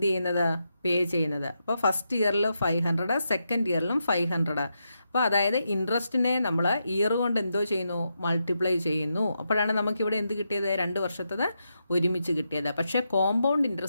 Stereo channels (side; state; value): both; inverted; correlation -0.85